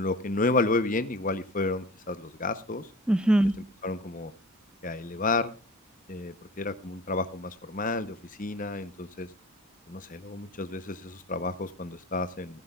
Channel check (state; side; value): normal; both; correlation 0.40